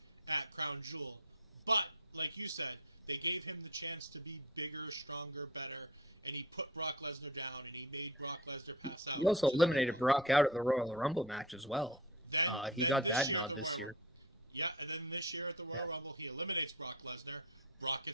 at Crown Jewel. But like you said, they gave him the chance to be bigger, stronger, better, and he put Brock Lesnar down, and he made Brock Lesnar pass out. He also eliminated Brock out of the Royal Rumble match as well. He Then got this that year nod at the this year. Yeah, and then this year at the Royal Rumble, he eliminates Brock Lesnar. Brock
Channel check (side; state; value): both; normal; correlation 0.29